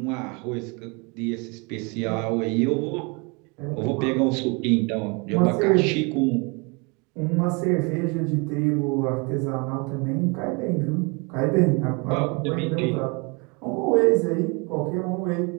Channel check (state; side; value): quieter; left; 30.4 dB